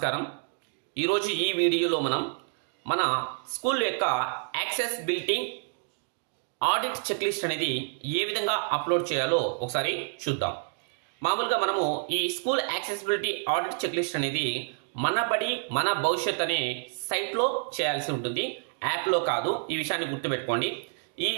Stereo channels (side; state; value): left; silent; 59 dB below the other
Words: ఈరోజు ఈ వీడియోలో మనం మన స్కూల్ యొక్క యాక్సెసిబిలిటీ ఆడిట్ చెక్ లిస్ట్ అనేది ఏ విధంగా అప్లోడ్ చేయాలో ఒకసారి చూద్దాం. మామూలుగా మనము ఈ school accessibility audit checklist అనేది మన బడి మన భవిష్యత్ అనే సైట్లో చేయాల్సి ఉంటుంది, యాప్లో కాదు. ఈ విషయాన్ని గుర్తుపెట్టుకోండి. ఈ